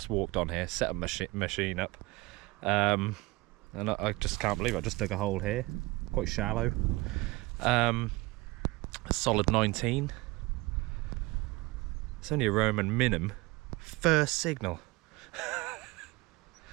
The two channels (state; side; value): quieter; left; 22.5 dB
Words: walked on here, set a machine up, and I just can't believe it. I just dug a hole here, quite shallow, a solid 19. It's only a Roman minim, first signal.